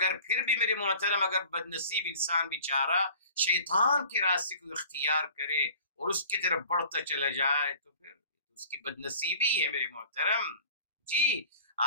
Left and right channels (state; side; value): inverted; both; correlation -0.45